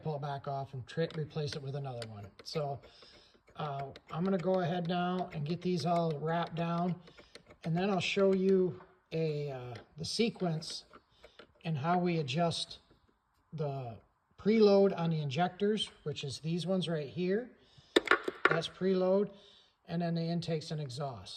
pull it back off and replace it with another one. So I'm going to go ahead now and get these all wrapped down, and then I'll show you the sequence and how we adjust the preload on the injectors, which is these ones right here. That's preload, and then the intakes and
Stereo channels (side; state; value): both; identical; correlation 1.00